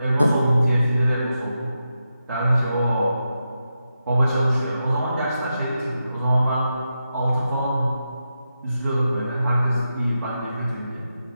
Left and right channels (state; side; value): inverted; both; correlation -0.88